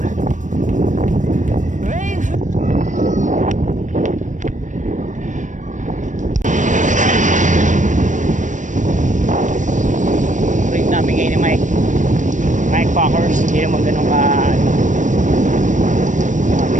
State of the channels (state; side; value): late; left; 0.36 ms